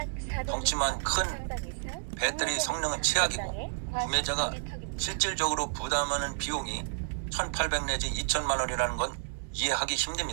덩치만 큰 배터리 성능은 최악이고 구매자가 실질적으로 부담하는 비용이 1,800 내지 2천만 원이라는 건 이해하기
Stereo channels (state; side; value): silent; left; digital silence